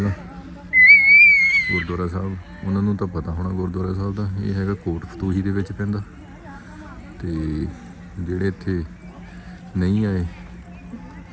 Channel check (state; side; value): identical; both; correlation 1.00